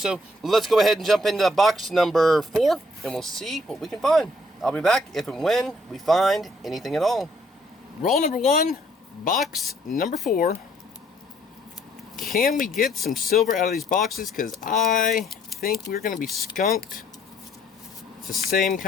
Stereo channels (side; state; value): both; normal; correlation 0.65